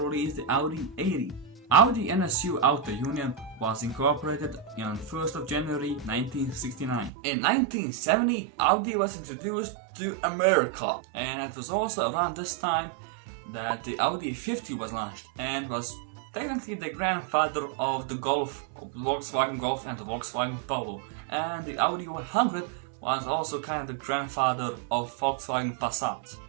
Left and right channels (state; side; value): drops out; left; at 7.1 s